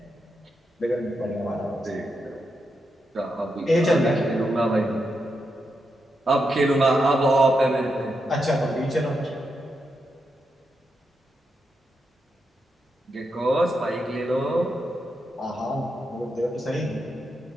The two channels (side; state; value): both; normal; correlation 0.84